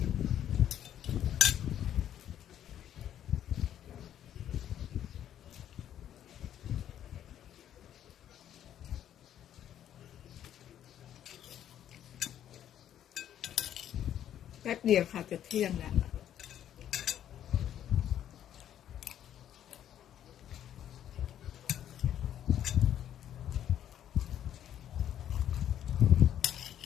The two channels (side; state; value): right; quieter; 10.6 dB